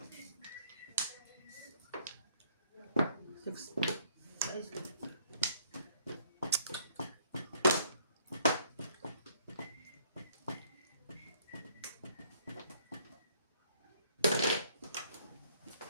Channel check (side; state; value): both; inverted; correlation -0.64